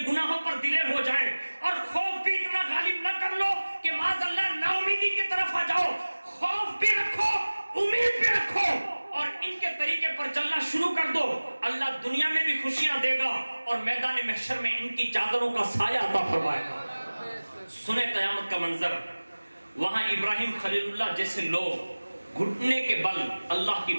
گناہوں پر دلیر ہو جائیں، اور خوف بھی اتنا غالب نہ کر لو کہ معاذ اللہ نا امیدی کی طرف آ جاؤ. خوف بھی رکھو، امید بھی رکھو، اور ان کے طریقے پر چلنا شروع کر دو. اللہ دنیا میں بھی خوشیاں دے گا اور میدان محشر میں ان کی چادروں کا سایہ عطا فرمائے گا. سنیں قیامت کا منظر، وہاں ابراہیم خلیل اللہ جیسے لوگ گھٹنے کے بل اللہ کی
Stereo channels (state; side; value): inverted; both; correlation -1.00